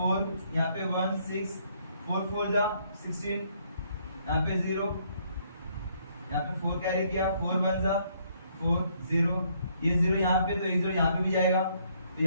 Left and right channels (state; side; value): inverted; both; correlation -0.68